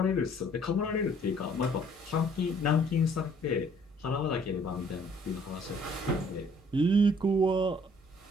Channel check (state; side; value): normal; both; correlation 0.60